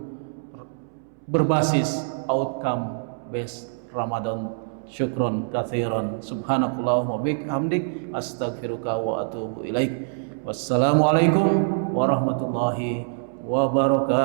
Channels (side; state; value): left; silent; 62 dB below the other